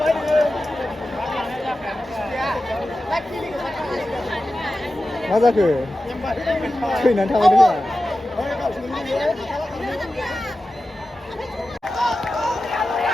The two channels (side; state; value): both; normal; correlation 0.94